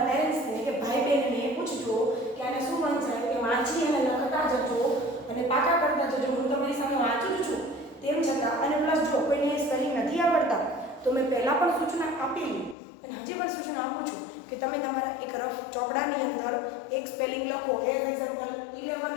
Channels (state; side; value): drops out; right; at 12.8 s